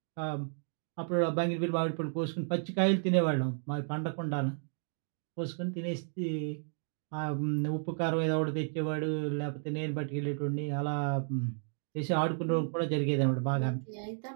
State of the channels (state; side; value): silent; left; 56 dB below the other